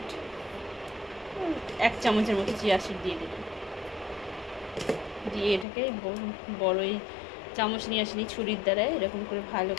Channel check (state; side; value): drops out; right; at 5.7 s